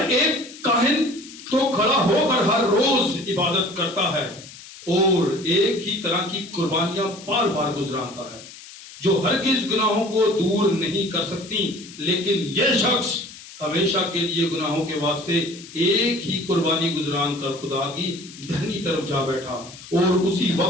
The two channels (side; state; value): left; noise; hiss, 17 dB below the sound